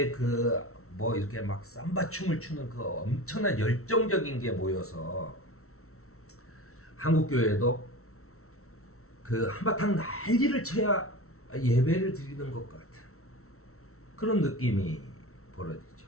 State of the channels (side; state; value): right; late; 0.63 ms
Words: 그 뭐 이렇게 막 삼바 춤을 추는 그 엄청난 열정적인 게 모여서 한국 교회도 그 한바탕 난리를 쳐야 예배를 드리는 것 같은 그런 느낌이 벌어지죠.